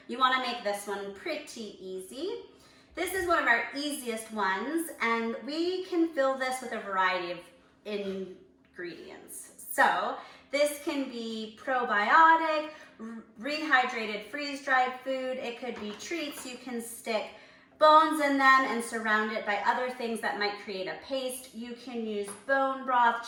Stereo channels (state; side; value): identical; both; correlation 1.00